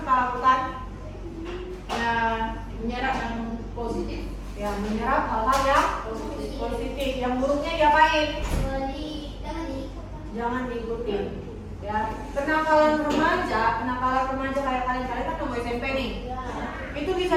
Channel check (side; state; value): both; identical; correlation 1.00